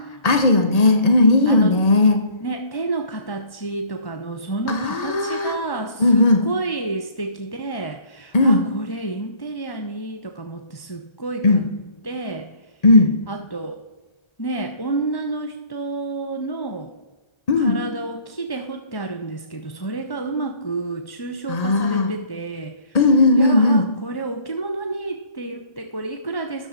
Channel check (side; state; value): right; late; 1.1 ms